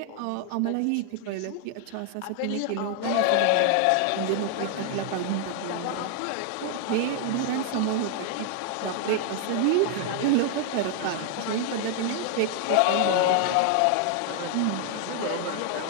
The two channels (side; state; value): both; different; correlation 0.00